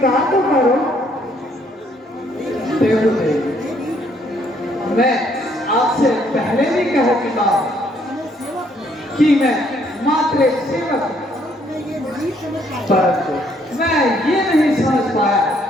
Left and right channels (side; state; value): both; normal; correlation 0.67